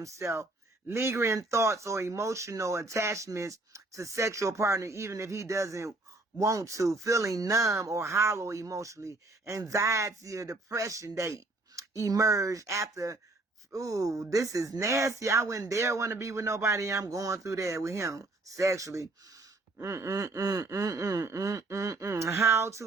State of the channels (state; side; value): quieter; left; 3.0 dB